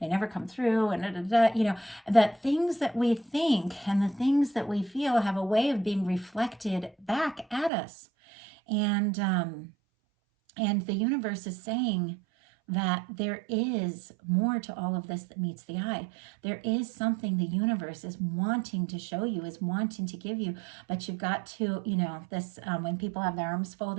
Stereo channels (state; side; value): drops out; left; at 7.7 s